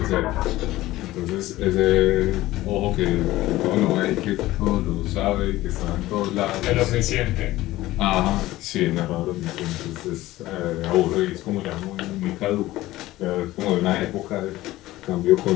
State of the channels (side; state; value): right; quieter; 16.8 dB